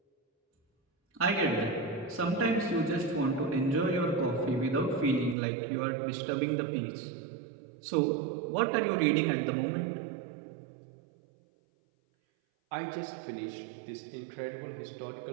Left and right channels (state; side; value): drops out; left; at 5.4 s